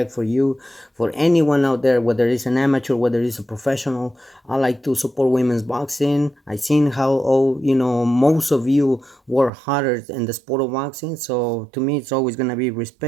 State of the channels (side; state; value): left; drops out; at 9.5 s